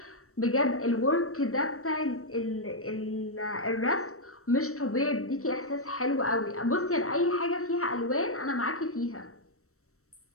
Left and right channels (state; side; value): late; right; 0.63 ms